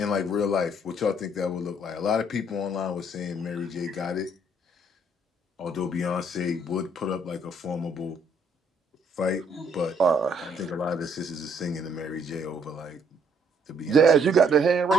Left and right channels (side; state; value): both; normal; correlation 0.67